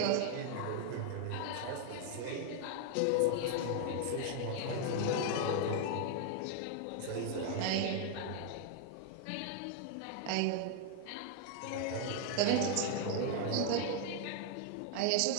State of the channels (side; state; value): both; different; correlation 0.00